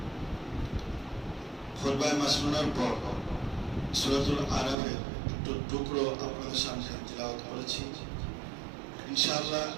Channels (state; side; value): drops out; left; at 4.8 s